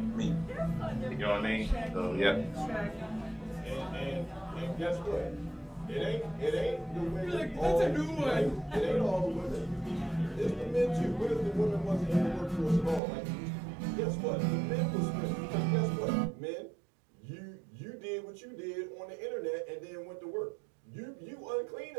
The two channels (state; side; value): drops out; left; at 13.0 s